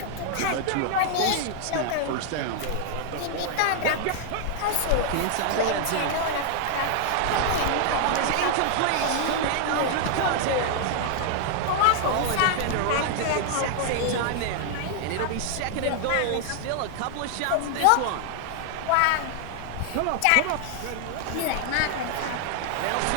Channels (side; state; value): both; different; correlation 0.00